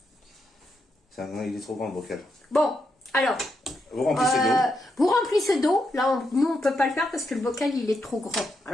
Il est trop grand le bocal. Bon, alors... Vous remplissez d'eau. Vous remplissez d'eau. Là, nous, on peut pas le faire parce que le bocal, il est trop grand.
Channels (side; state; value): both; normal; correlation 0.82